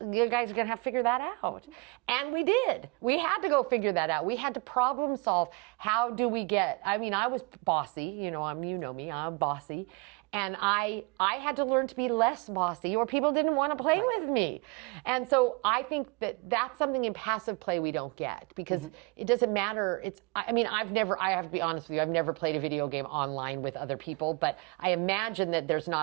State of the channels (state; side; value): quieter; left; 28.6 dB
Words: you guys are going to have to figure that out. And we did. We had to go figure that out. We had to problem solve. How do we I was bossy. You know me, I'm bossy. And I had to learn to be less bossy, or people didn't want to play with me. And so I think that's something in passive play we don't get, because it doesn't matter. I have to be honest with you, I've never played a video game online with other people, but I imagine that there's